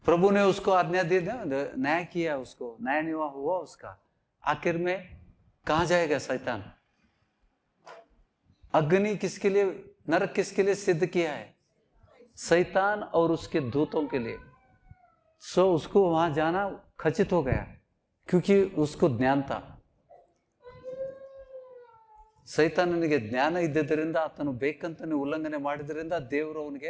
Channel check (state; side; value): identical; both; correlation 1.00